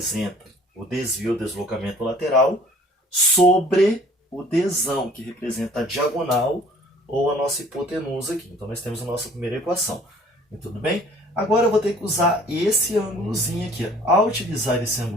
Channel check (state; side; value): normal; both; correlation 0.53